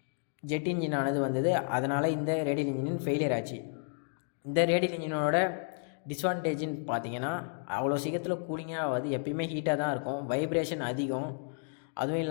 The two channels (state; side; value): silent; right; 57 dB below the other